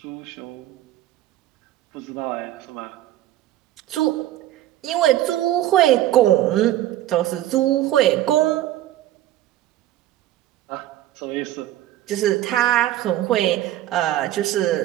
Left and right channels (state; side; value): quieter; left; 13.6 dB